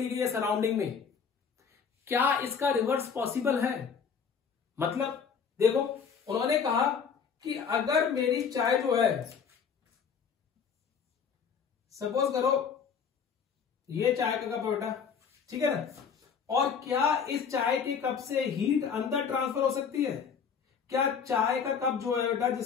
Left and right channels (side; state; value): right; quieter; 6.5 dB